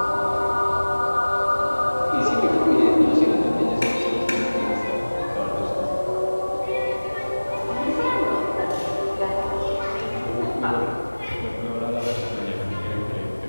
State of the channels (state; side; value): inverted; both; correlation -1.00